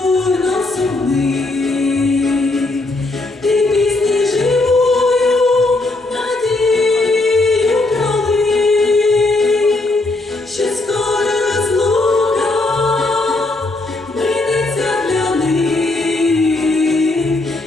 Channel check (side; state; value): right; quieter; 3.0 dB